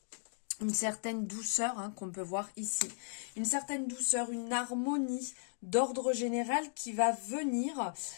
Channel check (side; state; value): right; silent; digital silence